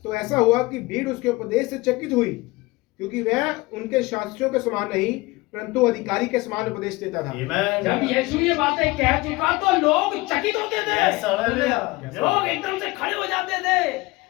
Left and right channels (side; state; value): right; quieter; 22.1 dB